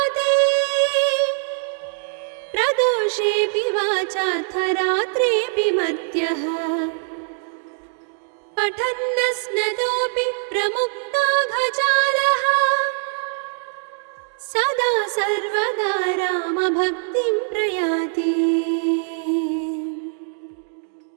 प्रदोषेऽपि वाचार्थरात्रेऽपि मर्त्यः पठन्नस्नतोऽपि प्रमुक्ताघजालः सदा सर्वदा रामभक्तिं प्रयाति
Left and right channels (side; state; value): left; silent; digital silence